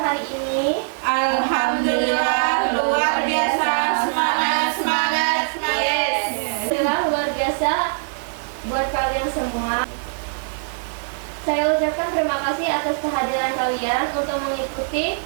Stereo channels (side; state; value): left; silent; digital silence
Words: hari ini? Alhamdulillah luar biasa, semangat. Yes. Alhamdulillah luar biasa buat kalian semua. Saya ucapkan terima kasih atas kehadiran kalian untuk mengikuti